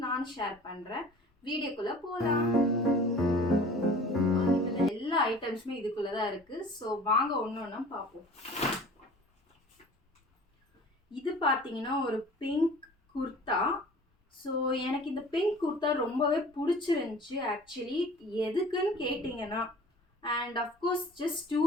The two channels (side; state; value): both; normal; correlation 0.45